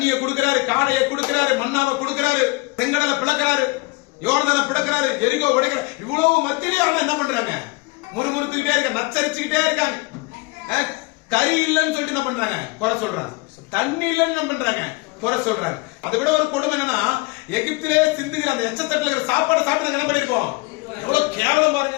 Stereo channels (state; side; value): quieter; right; 26.1 dB